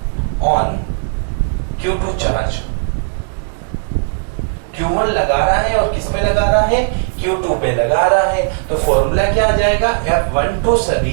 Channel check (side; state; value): left; silent; digital silence